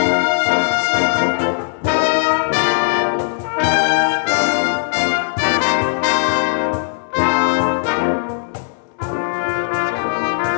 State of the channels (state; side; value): silent; right; digital silence